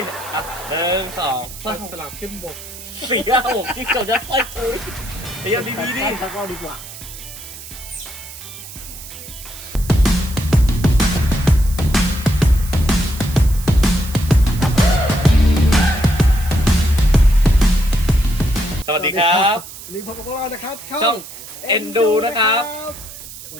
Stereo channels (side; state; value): right; noise; hiss, 14 dB below the sound